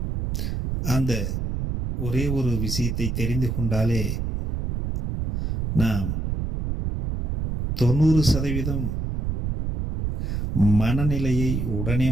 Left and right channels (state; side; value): noise; right; rumble, 2 dB below the sound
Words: அந்த ஒரே ஒரு விஷயத்தை தெரிந்து கொண்டாலே நாம் 90% மனநிலையை உடனே